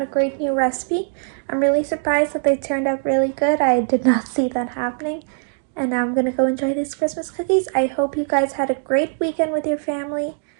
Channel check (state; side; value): silent; left; 65 dB below the other